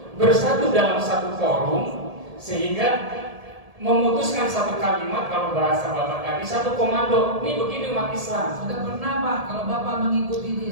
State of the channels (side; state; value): left; late; 1.7 ms